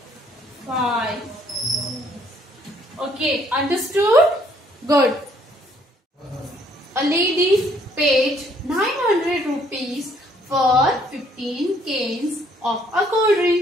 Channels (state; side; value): normal; both; correlation 0.65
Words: Okay, understood? Good. A lady paid 900 rupees for 15 cans of a cold